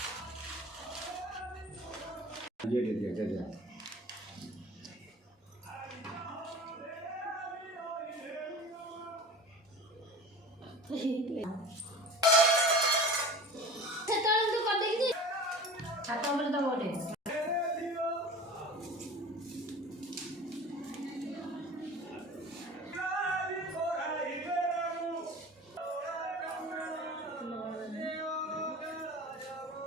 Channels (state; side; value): normal; both; correlation 0.38